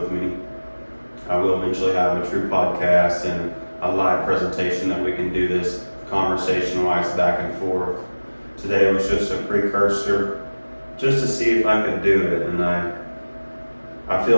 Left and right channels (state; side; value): inverted; both; correlation -1.00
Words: me. I will eventually have a true podcast and a live presentation that we can do this conversation-wise back and forth. Today was just a precursor, just to see if I could do it, and I feel